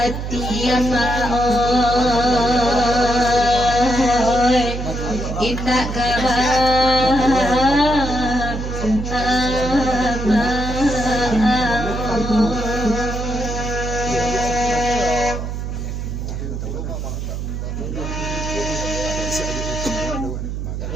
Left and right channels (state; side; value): noise; right; hum, 5 dB below the sound